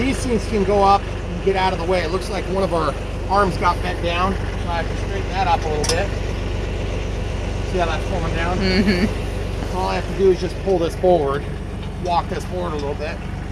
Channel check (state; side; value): identical; both; correlation 1.00